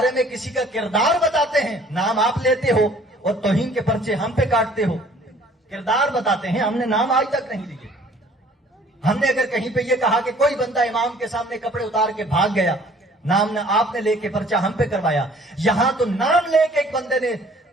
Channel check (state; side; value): normal; both; correlation 0.54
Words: میں کسی کا کردار بتاتے ہیں، نام آپ لیتے ہو اور توہین کے پرچے ہم پہ کاٹتے ہو۔ کردار بتاتے ہیں، ہم نے نام آج تک نہیں لیے۔ ہم نے اگر کہیں پہ یہ کہا کہ کوئی بندہ امام کے سامنے کپڑے اتار کے بھاگ گیا، نام نہ آپ نے لے کے پرچہ ہم پہ کروایا، یہاں تو نام لے کے ایک بندے نے